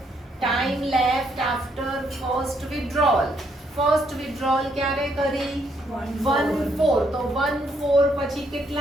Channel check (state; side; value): normal; both; correlation 0.73